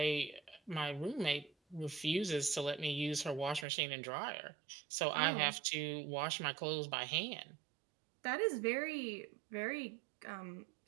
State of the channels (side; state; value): left; drops out; at 3.7 s